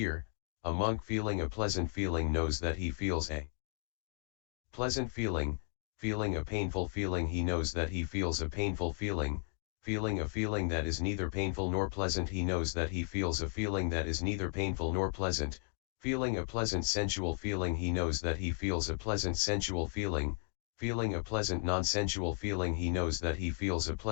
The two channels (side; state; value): right; silent; 54 dB below the other